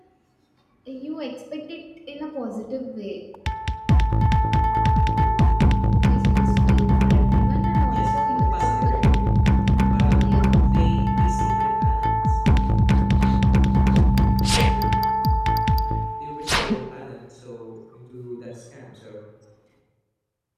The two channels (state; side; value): identical; both; correlation 1.00